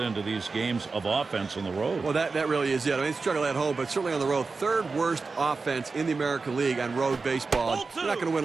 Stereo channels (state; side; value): quieter; left; 4.2 dB